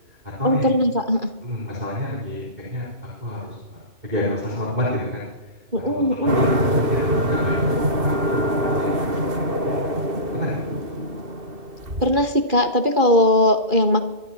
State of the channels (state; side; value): late; left; 2.7 ms